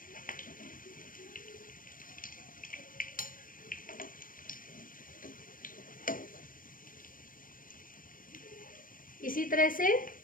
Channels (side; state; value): right; late; 0.40 ms